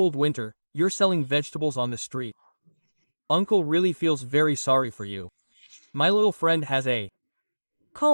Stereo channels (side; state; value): both; inverted; correlation -1.00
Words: winter, you're selling vegetables on the street. Uncle really feels very sorry for you. My little friend has a